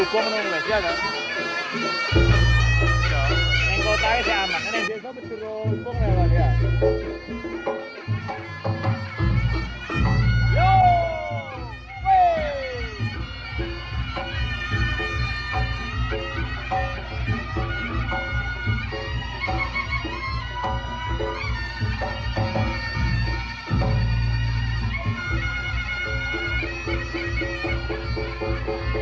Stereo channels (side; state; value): both; identical; correlation 1.00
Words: nang Malaysia kan. Neng kota sih aman, neng desa dirubung lewat ya. Yo! Wey!